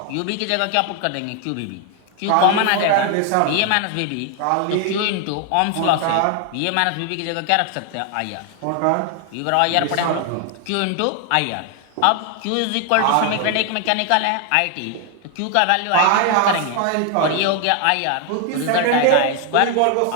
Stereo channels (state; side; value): different; both; correlation 0.00